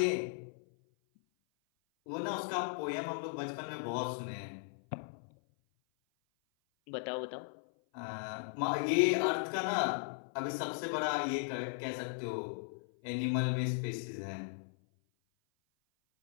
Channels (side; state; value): right; silent; 53 dB below the other